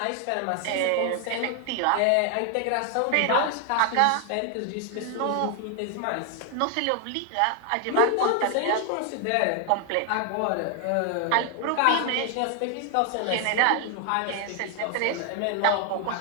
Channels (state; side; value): different; both; correlation 0.00